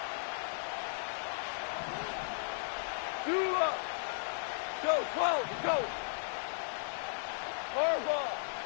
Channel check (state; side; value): silent; right; digital silence